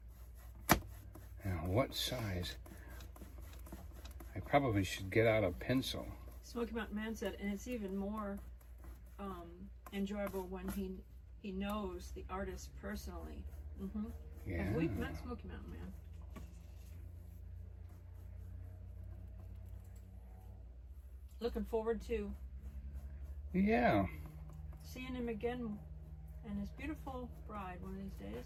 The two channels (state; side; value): identical; both; correlation 1.00